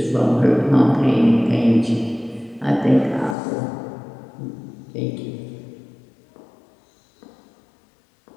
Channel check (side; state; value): right; drops out; at 3.4 s